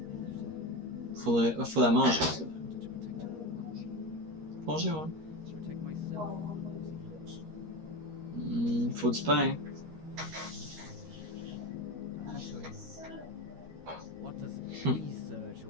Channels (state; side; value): late; left; 13 ms